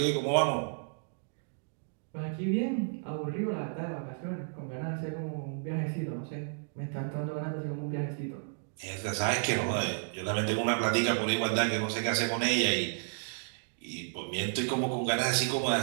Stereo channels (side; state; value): left; silent; digital silence